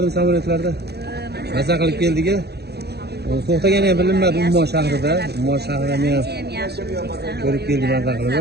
samolyotlarda? Maza qilib keldik-a. To'xtagani ham bilinmadi Ummon shahrida. Ummon shahrida men ko'rib keldim maza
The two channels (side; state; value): left; late; 0.48 ms